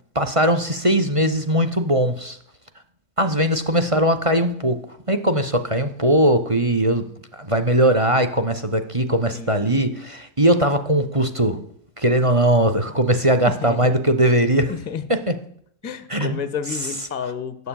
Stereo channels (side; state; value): left; late; 1.5 ms